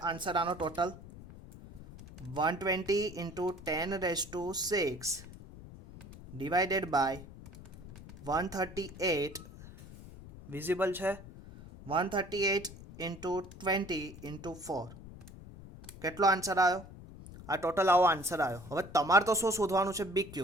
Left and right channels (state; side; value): noise; left; rumble, 16 dB below the sound